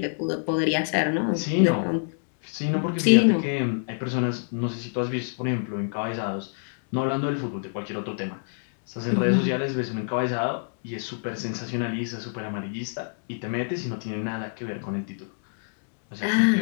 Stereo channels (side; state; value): right; silent; digital silence